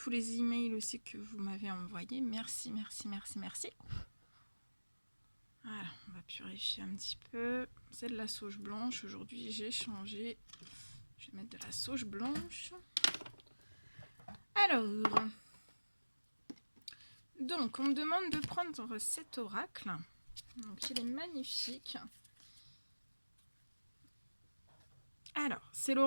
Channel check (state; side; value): inverted; both; correlation -1.00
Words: les emails aussi que vous m'avez envoyés. Merci. Voilà, on va purifier un petit peu. C'est de la sauge blanche. Aujourd'hui, j'ai changé. Je vais mettre de la sauge blanche. Alors, donc, on me demande de prendre cet oracle. Donc, il est magnifique. Alors, c'est